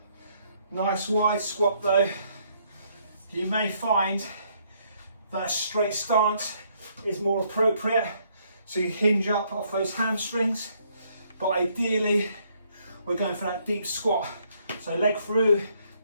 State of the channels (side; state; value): both; inverted; correlation -0.69